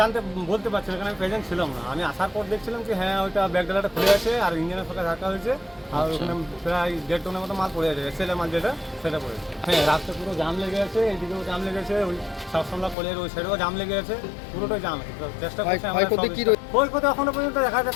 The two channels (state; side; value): drops out; right; at 13.0 s